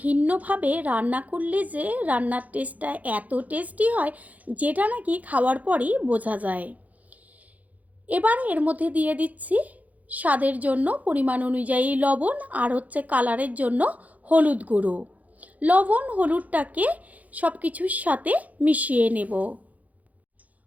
রান্না করলে যে রান্নার টেস্টটা এত টেস্টি হয়, যেটা নাকি খাওয়ার পরই বোঝা যায়। এবার এর মধ্যে দিয়ে দিচ্ছি স্বাদের জন্য পরিমাণ অনুযায়ী লবণ আর কালারের জন্য হলুদ গুঁড়ো। লবণ হলুদটাকে সব কিছুর সাথে মিশিয়ে নেব।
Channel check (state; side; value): late; left; 0.075 ms